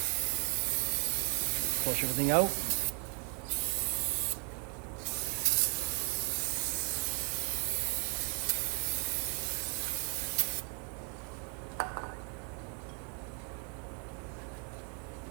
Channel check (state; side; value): quieter; left; 35.5 dB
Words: Flush everything out.